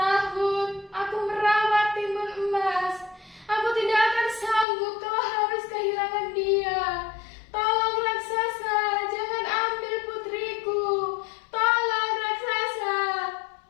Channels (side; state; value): right; drops out; at 4.7 s